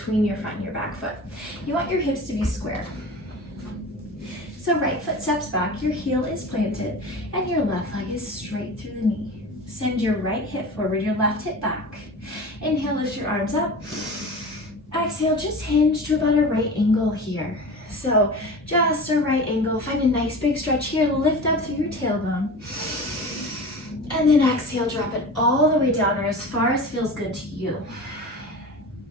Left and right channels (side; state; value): both; normal; correlation 0.34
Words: your front and your back foot. You want your hips to be square. So right foot steps back, your heel is planted, and your left leg is straight through the knee. Send your right hip forward, your left hip back. Inhale, lift your arms up. Exhale, just hinge to about a right angle here. So just a right angle. Find a nice big stretch here. Lift up through your tailbone. And then exhale, drop it all the way down or as far as feels good to you.